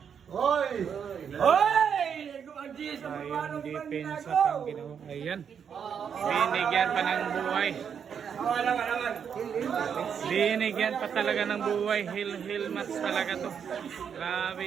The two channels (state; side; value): quieter; left; 7.5 dB